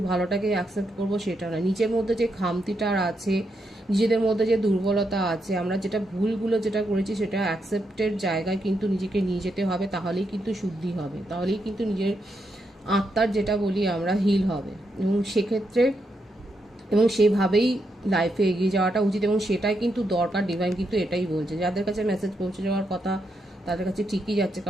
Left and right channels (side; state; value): both; normal; correlation 0.82